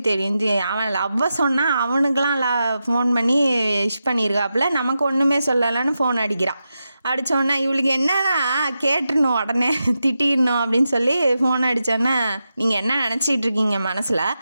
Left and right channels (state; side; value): inverted; both; correlation -0.89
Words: தெரியும், அவன் லவ்வை சொன்னால் அவனுக்கெலாம் ஃபோன் பண்ணி விஷ் பண்ணியிருக்காப்புல, நமக்கு ஒன்றுமே சொல்லலைன்னு ஃபோன் அடிக்கிறான். அடித்தோன்னே இவளுக்கு என்னன்னா கேட்டுடணும், உடனே திட்டிடணும் அப்படின்னு சொல்லி ஃபோன் அடித்தோன்னே, நீங்கள் என்ன நினச்சிட்டு இருக்கீங்க மனசில்,